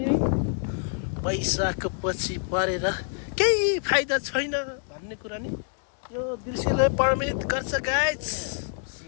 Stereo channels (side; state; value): right; silent; 60 dB below the other